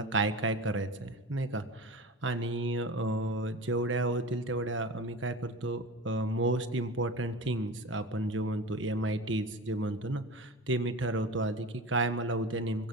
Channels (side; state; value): both; normal; correlation 0.31